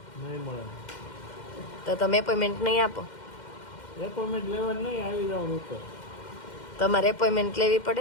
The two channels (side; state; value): right; late; 2.1 ms